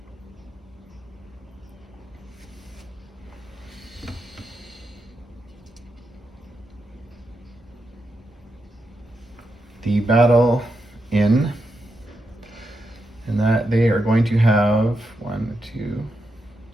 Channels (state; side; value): normal; both; correlation 0.85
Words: The battle in, and that they are going to have 1, 2,